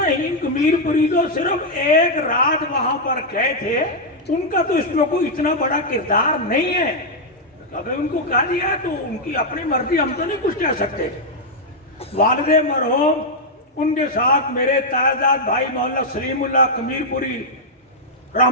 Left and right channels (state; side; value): normal; both; correlation -0.03